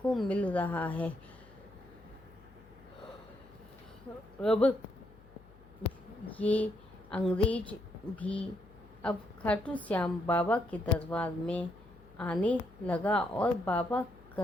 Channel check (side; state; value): left; noise; hum, 24 dB below the sound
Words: मिल रहा है। अब ये अंग्रेज भी अब खाटू श्याम बाबा के दरबार में आने लगा और बाबा